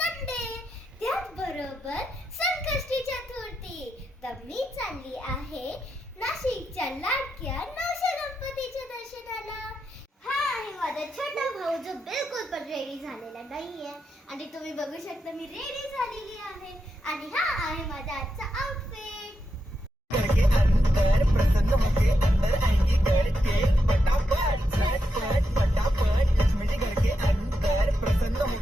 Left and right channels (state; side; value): normal; both; correlation 0.85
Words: त्याच बरोबर संकष्टी चतुर्थी. तर मी चालली आहे नाशिकच्या लाडक्या नवशे गणपतीच्या दर्शनाला. हा आहे माझा छोटा भाऊ जो बिलकुल पण रेडी झालेला नाहीये आणि तुम्ही बघू शकता मी रेडी झालेली आहे. आणि हा आहे माझा आजचा आउटफिट. प्रसन्न होके अंदर आएंगी घर के फटाफट झटपट फटाफट लक्ष्मी जी घर के अंदर प्रसन्न